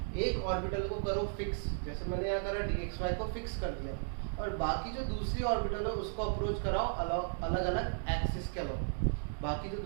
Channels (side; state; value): left; silent; digital silence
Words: एक ऑर्बिटल को करो फिक्स, जैसे मैंने यहाँ करा dxy को फिक्स कर दिया, और बाकी जो दूसरी ऑर्बिटल है उसको अप्रोच कराओ अलग अलग एक्सिस के अलॉन्ग, बाकी जो